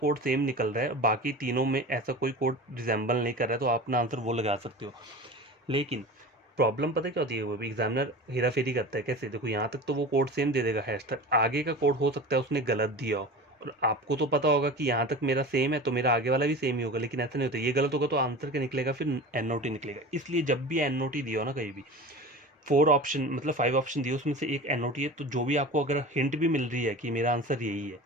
सेम निकल रहा है, बाकी तीनों में ऐसा कोई कोड रिजेंबल नहीं कर रहा है, तो आप अपना आंसर वो लगा सकते हो। लेकिन प्रॉब्लम पता क्या होती है, वो भी एग्जामिनर हेरा फेरी करता है। कैसे, देखो यहाँ तक तो वो कोड सेम दे देगा हैश तक, आगे का कोड हो सकता है उसने गलत दिया हो, और आपको तो पता होगा कि यहाँ तक मेरा सेम है तो मेरा आगे वाला भी सेम ही होगा, लेकिन ऐसा नहीं होता। ये गलत होगा तो आंसर क्या निकलेगा, फिर एन ओ टी निकलेगा। इसलिए जब भी एन ओ टी दिया हो ना कहीं भी, 4 ऑप्शन मतलब 5 ऑप्शन दिए, उसमें से एक एन ओ टी है, तो जो भी आपको अगर हिंट भी मिल रही है कि मेरा आंसर यही है,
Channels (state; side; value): normal; both; correlation 0.34